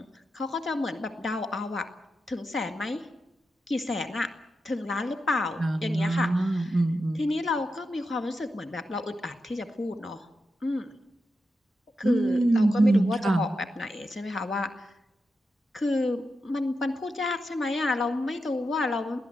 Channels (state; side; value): normal; both; correlation 0.88